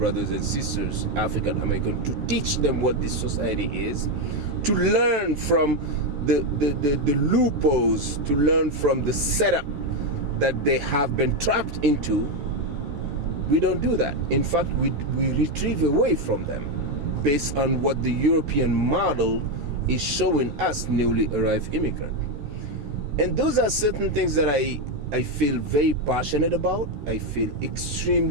and sisters, African American, to teach them what this society is, to learn from the loopholes, to learn from the setup that they have been trapped into. We don't do that. In fact, we retrieve away from them based on what the European model is showing us newly arrived immigrant. And those are certain things that I feel very passionate about. I feel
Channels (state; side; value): late; left; 14 ms